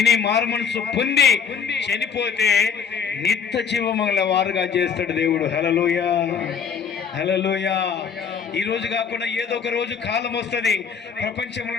మారు మనసు పొంది చనిపోతే నిత్య జీవముల వారుగా చేస్తాడు దేవుడు. హల్లెలూయా, హల్లెలూయా. ఈ రోజు కాకుండా ఏదో ఒక రోజు కాలం వస్తుంది, ప్రపంచంలో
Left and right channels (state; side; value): quieter; right; 6.7 dB